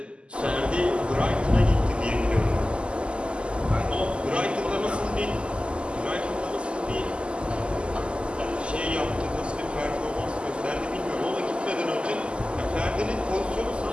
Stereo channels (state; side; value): late; left; 0.052 ms